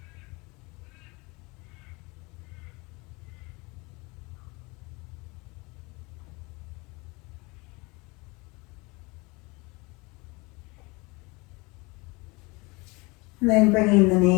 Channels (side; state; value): right; quieter; 26.0 dB